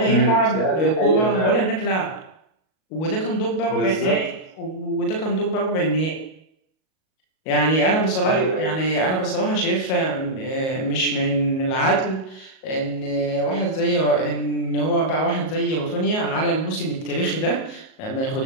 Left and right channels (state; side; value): late; right; 38 ms